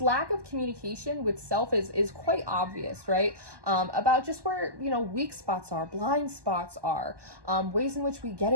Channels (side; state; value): left; late; 1.2 ms